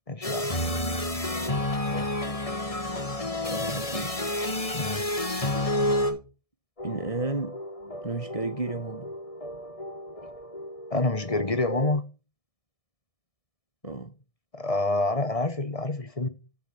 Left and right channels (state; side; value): late; right; 1.7 ms